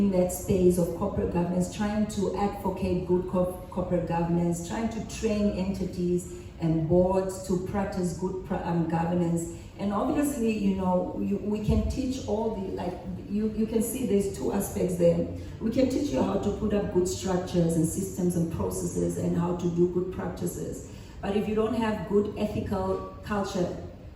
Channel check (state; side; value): identical; both; correlation 1.00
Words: that space of corporate governance, trying to advocate good corporate governance, trying to train entities and boards to practice good governance. And obviously, we can teach all the, you can see there's two aspects there. We can teach you how to put up good structures and systems and processes and how to do good practices. But if you don't have good ethical culture,